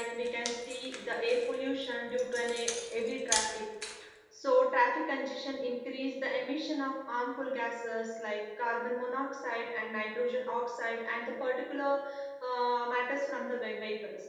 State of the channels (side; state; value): both; identical; correlation 1.00